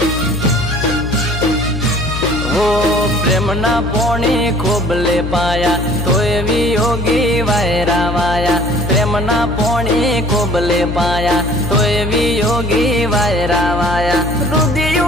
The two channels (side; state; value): left; noise; hum, 5 dB below the sound